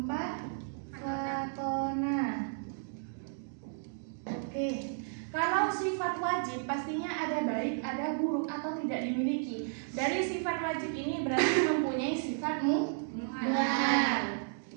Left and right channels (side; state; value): left; silent; digital silence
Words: fatona. Oke. Kalau sifat wajib pastinya ada baik, ada buruk atau tidak dimiliki. Dari sifat wajib ini berarti mempunyai sifat muhal.